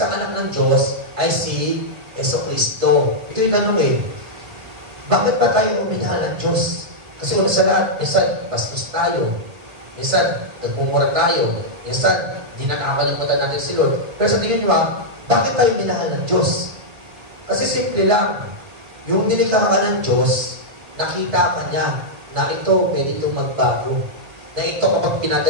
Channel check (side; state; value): left; late; 1.7 ms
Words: anak ng Diyos ay si Jesucristo. Ito yung tanong bakit pa tayo uminahal ng Diyos? Kasi una sa lahat, minsan bastos tayo, minsan nagmumura tayo, minsan di nakakalimutan natin si Lord. Pero sa tingin nyo, bakit tayo minahal ng Diyos? Kasi simple lang, yung nilikha ka ng Diyos, nakita ka niya na ito pwede itong magbago. Na ito kapag